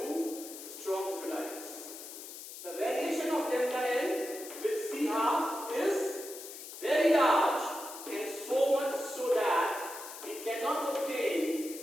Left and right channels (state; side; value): noise; left; hiss, 12 dB below the sound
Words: strong electrolytes. The variation of lambda n with C half is very large, and so much so that we cannot obtain